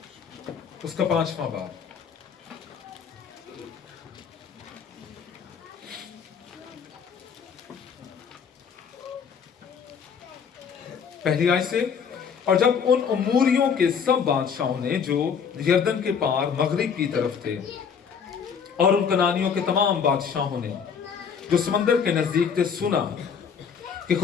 اس کا 5واں باب. پہلی آیت سے، اور جب ان اموریوں کے سب بادشاہوں نے جو یردن کے پار مغرب کی طرف تھے اور ان کنانیوں کے تمام بادشاہوں نے جو سمندر کے نزدیک تھے سنا کہ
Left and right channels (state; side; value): quieter; right; 6.7 dB